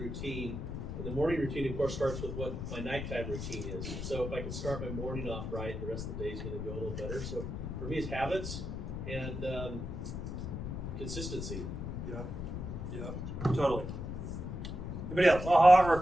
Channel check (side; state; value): left; noise; rumble, 5 dB below the sound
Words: And the morning routine, of course, starts with what my nighttime routine is. So if I can start my morning off right, the rest of the day is going to go a little better. So for me, it's habits and consistency. Yeah, totally. Anybody else? Aha or a